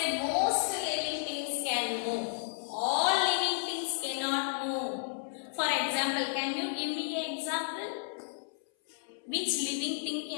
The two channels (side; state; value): right; silent; 55 dB below the other